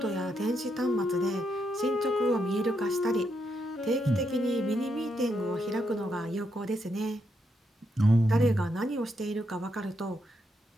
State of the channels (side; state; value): both; normal; correlation 0.80